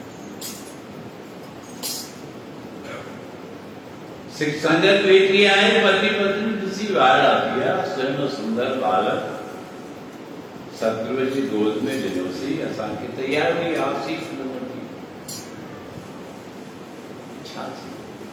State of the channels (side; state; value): both; identical; correlation 1.00